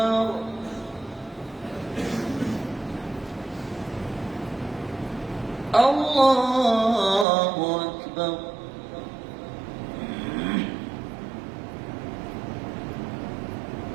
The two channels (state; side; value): drops out; left; at 7.2 s